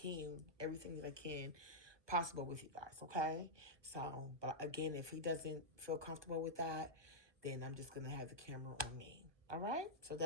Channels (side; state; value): left; late; 1.2 ms